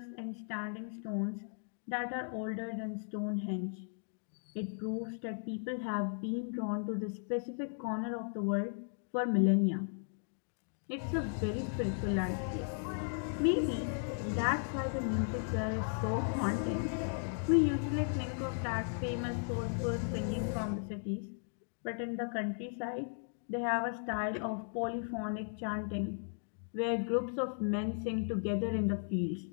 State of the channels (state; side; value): silent; right; digital silence